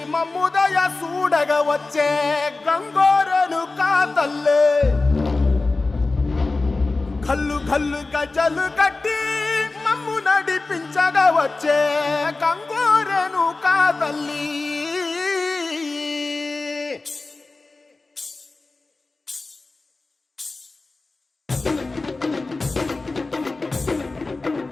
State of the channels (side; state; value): right; quieter; 3.5 dB